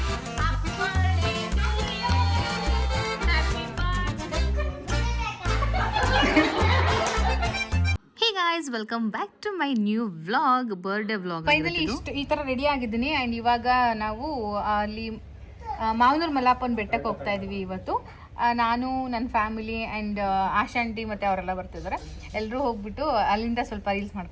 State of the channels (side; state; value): both; identical; correlation 1.00